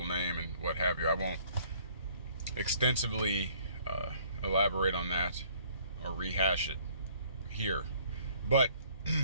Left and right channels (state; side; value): inverted; both; correlation -0.58